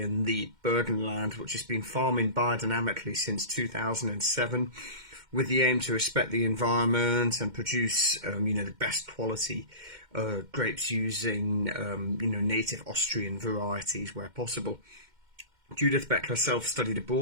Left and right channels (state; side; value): late; left; 2.1 ms